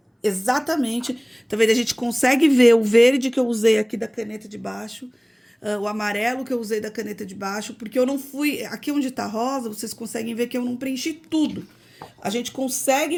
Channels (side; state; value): both; identical; correlation 1.00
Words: exatamente... Tá vendo? A gente consegue ver o verde que eu usei aqui da caneta de baixo, o amarelo que eu usei da caneta de baixo, porque eu não fui... Aqui onde tá rosa, vocês conseguem ver que eu não preenchi tudo. A gente